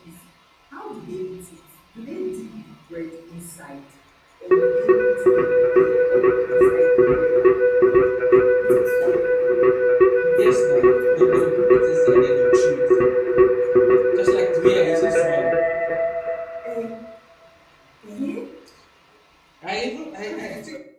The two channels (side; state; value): both; identical; correlation 1.00